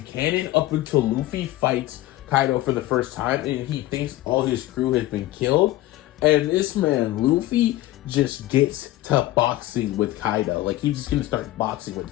canon up until Luffy fights Kaido for the first time and he thinks all his crew has been killed. And this man, Luffy, just gets to boxing with Kaido. Like, he's just gonna start boxing with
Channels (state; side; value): quieter; right; 16.2 dB